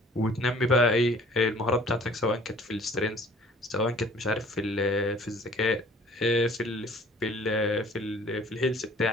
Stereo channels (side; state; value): both; normal; correlation 0.52